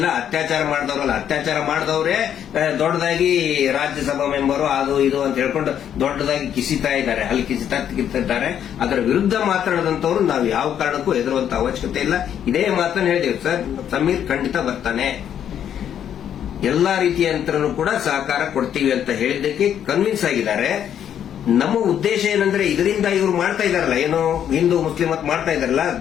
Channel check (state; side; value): quieter; right; 9.5 dB